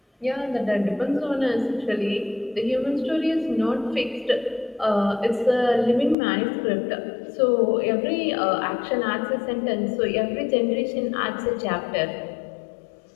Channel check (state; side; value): drops out; right; at 6.2 s